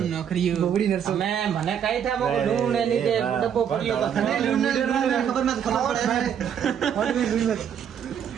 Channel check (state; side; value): quieter; left; 8.5 dB